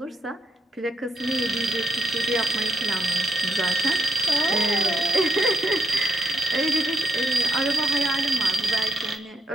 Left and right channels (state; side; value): normal; both; correlation 0.82